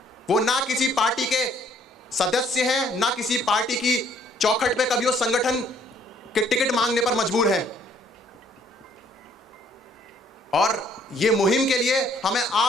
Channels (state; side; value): normal; both; correlation 0.63